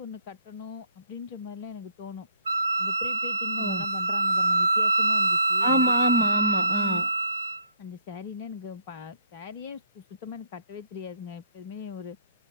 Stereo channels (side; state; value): both; inverted; correlation -0.69